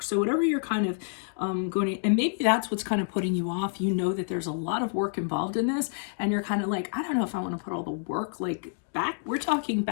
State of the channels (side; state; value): right; silent; 59 dB below the other